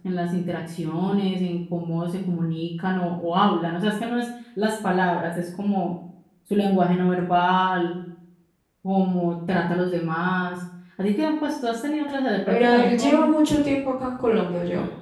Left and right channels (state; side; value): identical; both; correlation 1.00